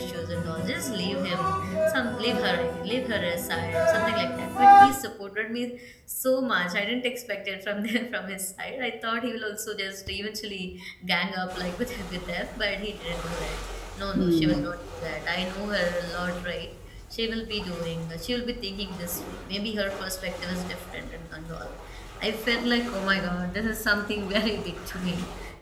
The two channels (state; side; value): identical; both; correlation 1.00